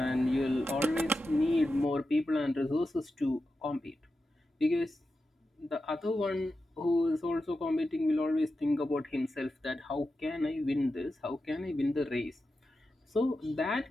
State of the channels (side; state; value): both; normal; correlation 0.90